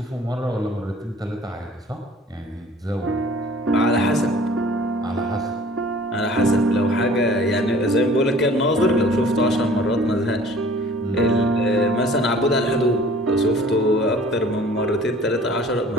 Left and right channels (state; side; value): normal; both; correlation 0.50